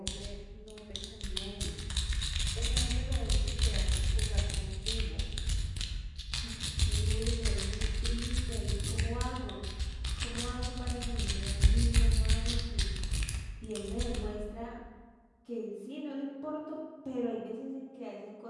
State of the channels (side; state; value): both; identical; correlation 1.00